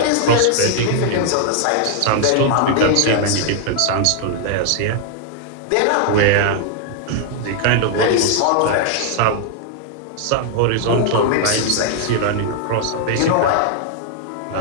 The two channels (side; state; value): both; different; correlation 0.00